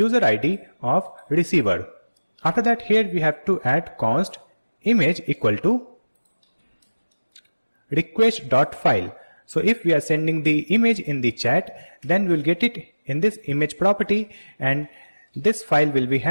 ID of receiver. After that, here we have to add const image equal to request.file. So if we are sending the image in the chat, then we'll get it in this image property, and this file will be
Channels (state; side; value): inverted; both; correlation -1.00